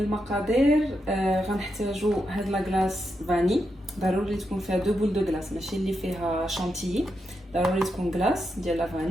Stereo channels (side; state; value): both; normal; correlation 0.84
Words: غنحتاجوا هاد لاكلاص فاني، ضروري تكون فيها دو بول دو كلاص، ماشي اللي فيها شانتيي، ضروري تكون كلاص ديال لا